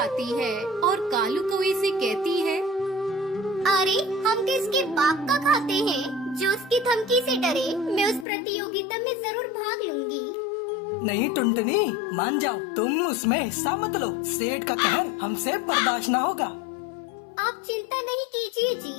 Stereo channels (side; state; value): right; drops out; at 8.2 s